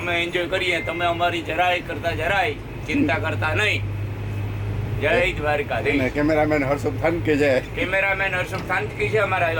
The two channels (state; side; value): identical; both; correlation 1.00